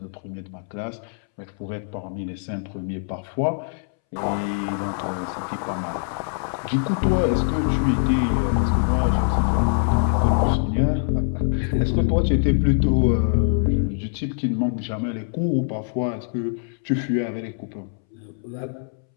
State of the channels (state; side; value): silent; right; 63 dB below the other